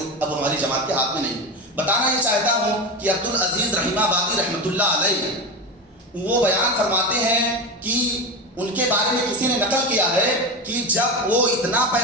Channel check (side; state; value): both; normal; correlation 0.21